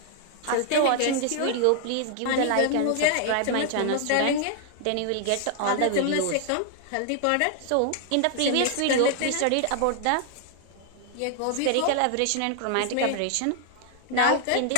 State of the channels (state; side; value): different; both; correlation 0.00